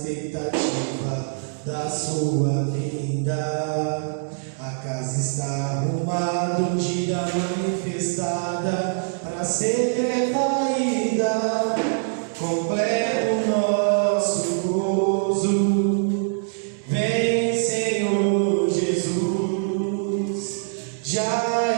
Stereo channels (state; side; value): silent; left; digital silence